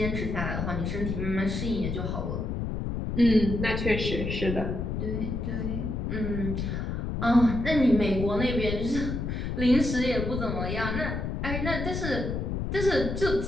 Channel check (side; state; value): left; noise; rumble, 3 dB below the sound